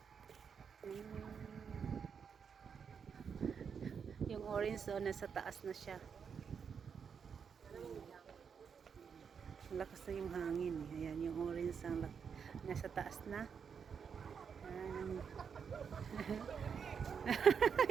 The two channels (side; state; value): left; quieter; 6.7 dB